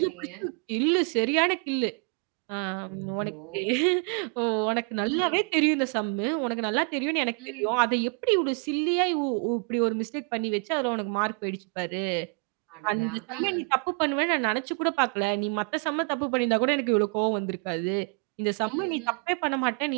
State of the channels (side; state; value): left; quieter; 39.5 dB